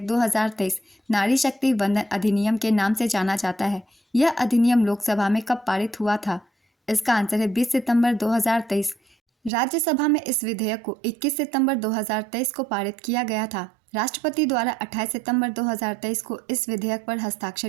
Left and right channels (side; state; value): left; drops out; at 9.5 s